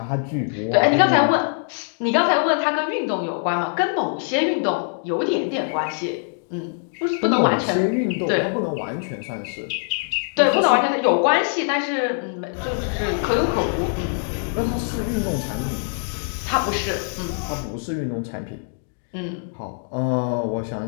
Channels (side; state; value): right; silent; 57 dB below the other